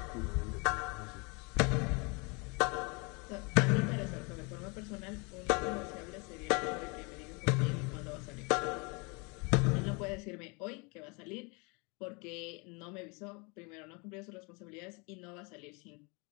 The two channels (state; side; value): quieter; right; 30.5 dB